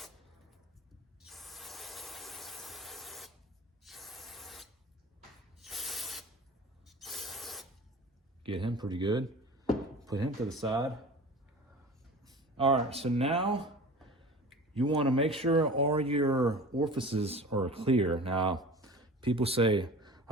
Get him pretty good. Put him to the side. All right, so now you want to make sure all your orifices are clear. Now, people say,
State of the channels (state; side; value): normal; both; correlation 0.38